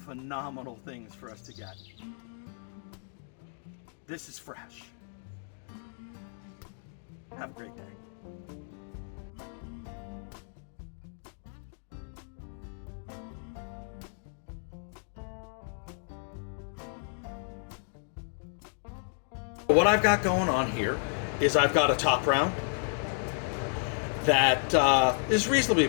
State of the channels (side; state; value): right; silent; 56 dB below the other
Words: things for us to get. This is fresh. Have a great day. What I've got going on here is I've got a top round that is reasonably